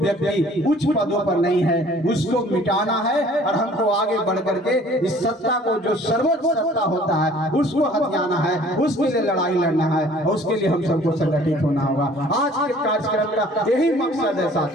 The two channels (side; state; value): both; normal; correlation 0.53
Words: उच्च पदों पर नहीं है, उसको मिटाना है, और हमको आगे बढ़ करके इस सत्ता को, जो सर्वोच्च सत्ता होता है, उसको हथियाना है, उसके लिए लड़ाई लड़ना है, और उसके लिए हम सबको संगठित होना होगा। आज के कार्यक्रम का यही मकसद है